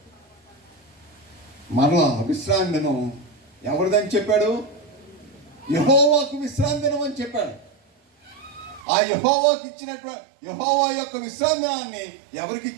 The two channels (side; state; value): left; drops out; at 8.8 s